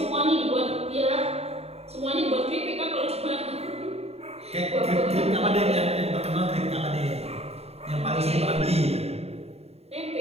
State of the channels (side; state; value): left; late; 0.30 ms